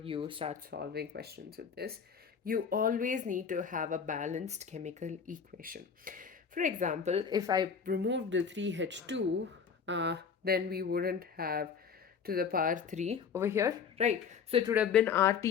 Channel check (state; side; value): quieter; right; 6.5 dB